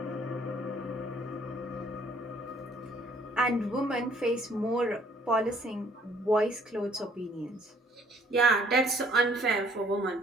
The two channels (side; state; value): both; normal; correlation 0.62